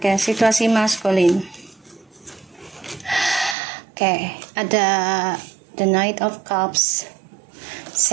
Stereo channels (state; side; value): drops out; left; at 3.6 s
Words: situasi maskulin. Oke, ada the Knight of Cups,